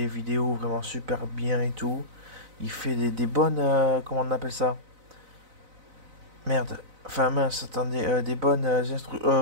vidéos vraiment super bien et tout. Il fait des bonnes. Comment on appelle ça? Merde. Enfin, mince, attendez. Des bonnes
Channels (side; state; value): left; late; 4.0 ms